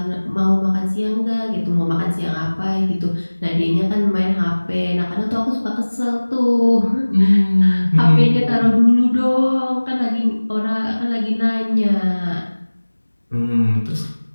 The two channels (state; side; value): inverted; both; correlation -1.00